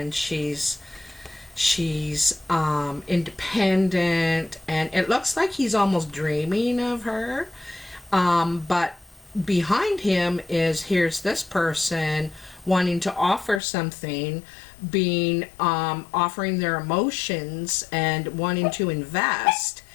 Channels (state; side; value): drops out; right; at 13.6 s